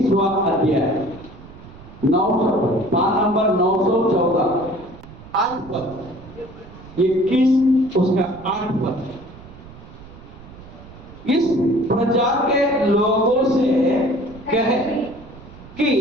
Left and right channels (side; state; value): right; noise; rumble, 18 dB below the sound